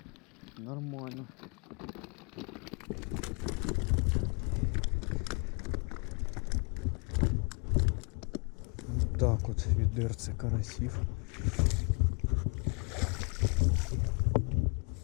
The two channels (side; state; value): right; quieter; 35.9 dB